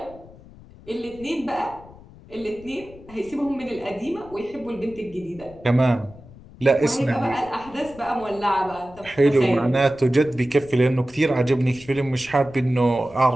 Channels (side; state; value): left; noise; rumble, 21 dB below the sound